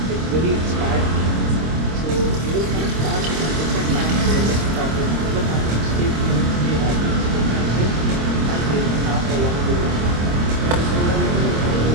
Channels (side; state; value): left; late; 26 ms